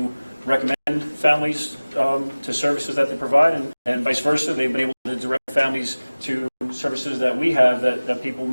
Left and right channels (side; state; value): both; inverted; correlation -0.99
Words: recommend families to services that they provide, and vice versa. They've been able to direct families to services that we have that people